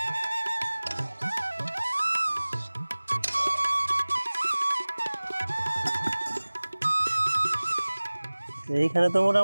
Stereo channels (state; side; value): inverted; both; correlation -1.00